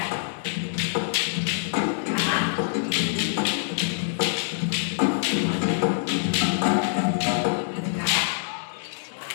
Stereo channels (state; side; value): silent; right; 62 dB below the other